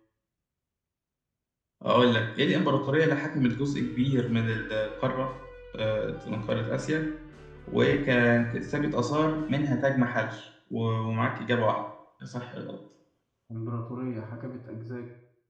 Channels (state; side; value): identical; both; correlation 1.00